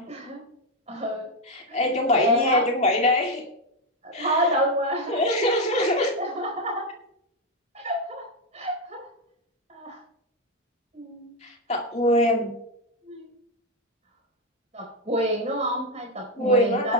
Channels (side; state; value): both; normal; correlation 0.06